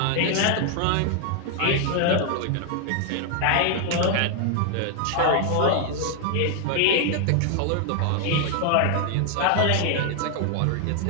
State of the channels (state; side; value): different; both; correlation 0.00